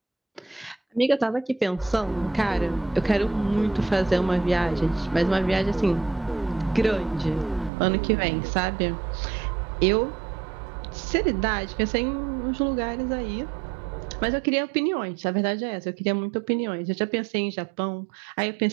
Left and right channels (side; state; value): left; drops out; at 7.7 s